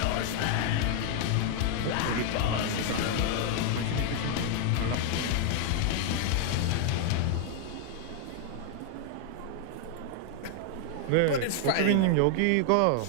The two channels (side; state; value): both; different; correlation 0.00